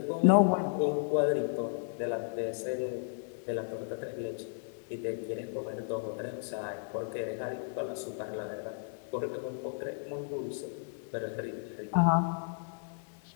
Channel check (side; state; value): right; silent; digital silence